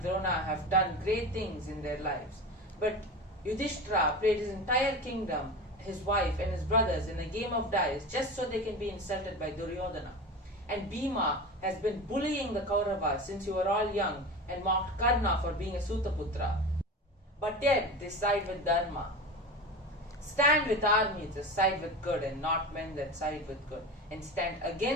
Drona have done great things in their lives, but Yudhishthira played his entire kingdom, his wife and his brothers in a game of dice just so they can be insulted by Duryodhana. And Bhima has been bullying the Kauravas since you were all young and mocked Karna for being a Sutaputra. But yet they side with Dharma. Stand with armies as side with good and not men that side with good. And stand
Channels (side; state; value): both; normal; correlation 0.28